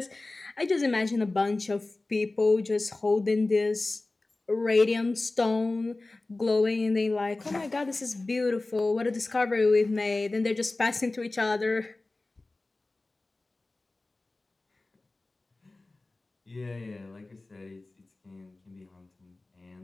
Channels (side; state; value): right; quieter; 3.1 dB